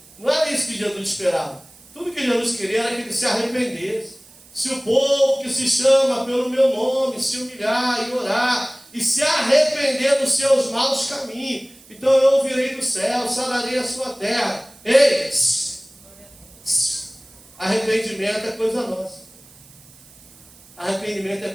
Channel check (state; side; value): noise; right; hiss, 24 dB below the sound